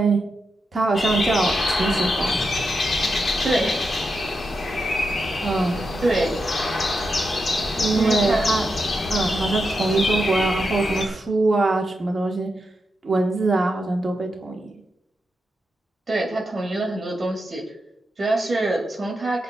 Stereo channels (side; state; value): both; normal; correlation 0.86